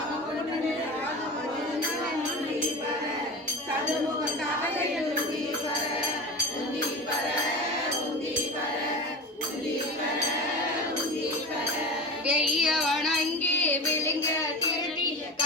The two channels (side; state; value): both; normal; correlation 0.29